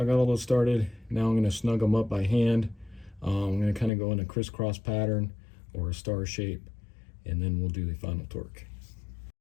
I got all those started. Now I'm going to snug them up by hand. I'm going to kind of go in a crisscross pattern or a star shape, and then we'll do the final torque.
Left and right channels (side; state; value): right; drops out; at 3.9 s